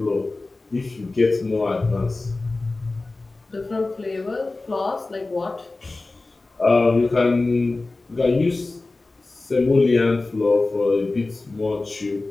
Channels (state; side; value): quieter; right; 3.3 dB